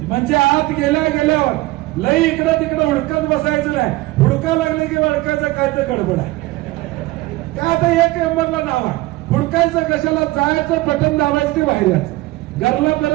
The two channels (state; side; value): quieter; left; 19.4 dB